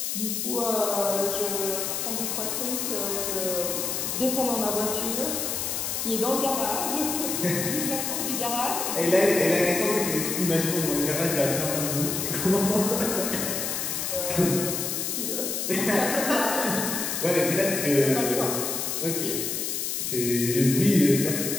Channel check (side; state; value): left; noise; hiss, 2 dB below the sound